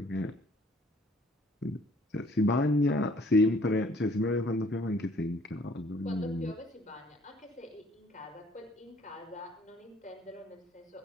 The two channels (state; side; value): normal; both; correlation 0.59